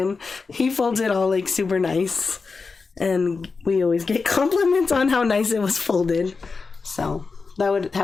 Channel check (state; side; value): quieter; right; 4.5 dB